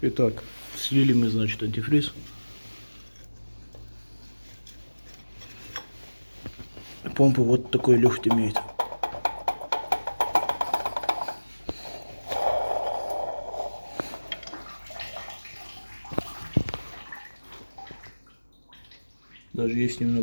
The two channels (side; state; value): both; inverted; correlation -1.00